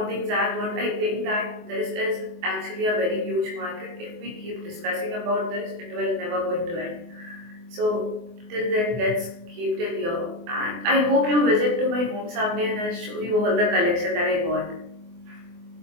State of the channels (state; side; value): late; left; 24 ms